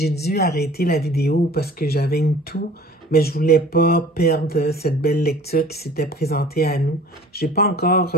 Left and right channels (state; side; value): normal; both; correlation 0.47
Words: dû arrêter la vidéo parce que j'avais une toux, mais je voulais pas perdre cette belle lecture qui s'était présentée à nous. Je suis pas